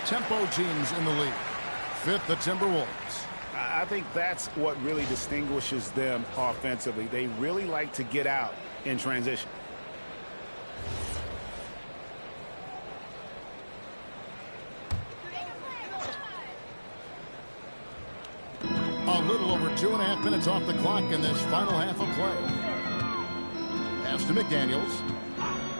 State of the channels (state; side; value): inverted; both; correlation -1.00